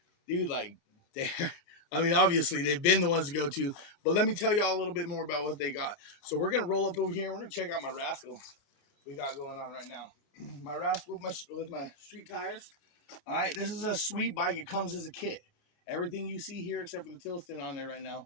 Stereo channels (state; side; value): late; right; 29 ms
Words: dude, like they, I mean, obviously they've been the ones to go to, but let me tell y'all a little bit more about what they got. So we're gonna roll up over here. We're gonna check out my Rascal we got going on right now. My Rascal with my street tires. All right, this is a sweet bike. It comes as a kit. Everything you see here, except for the Tilston on there right now,